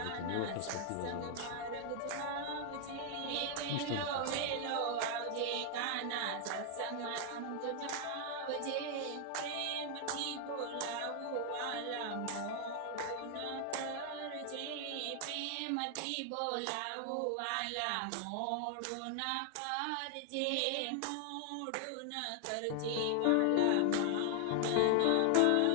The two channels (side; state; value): both; different; correlation 0.00